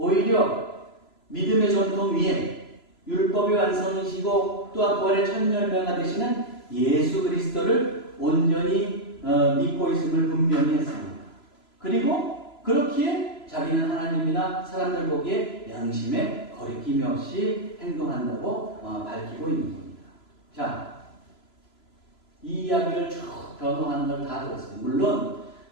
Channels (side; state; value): right; late; 3.0 ms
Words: 믿음의 전통 위에 율법의 완성이시고 또한 부활의 첫 열매가 되시는 예수 그리스도를 온전히 믿고 있음을 분명히 했습니다. 그리고 그렇기에 자기는 하나님이나 사람들 보기에 양심에 거리낌이 없이 행동한다고 밝히고 있는 겁니다. 자, 이 이야기를 쭉 변호하는 걸 다 들었어요. 물론